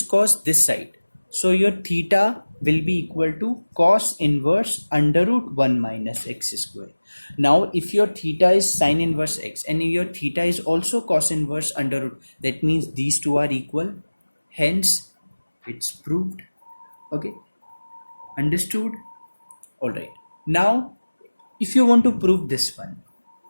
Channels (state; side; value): inverted; both; correlation -1.00